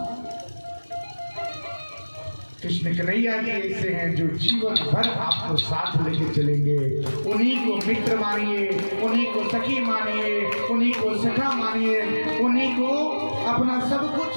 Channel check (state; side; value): inverted; both; correlation -1.00